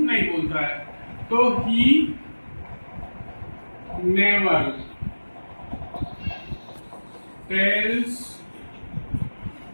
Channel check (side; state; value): both; inverted; correlation -1.00